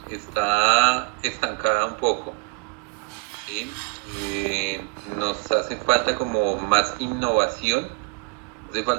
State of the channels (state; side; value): quieter; left; 28.1 dB